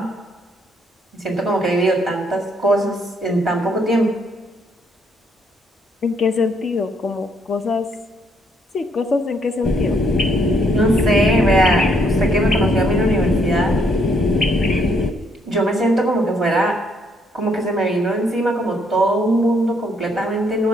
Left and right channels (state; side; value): normal; both; correlation 0.70